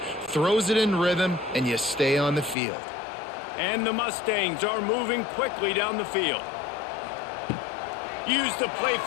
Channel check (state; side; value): drops out; right; at 2.6 s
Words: throws it in rhythm, and you stay on the field. And the Mustangs are moving quickly down the field. Use the play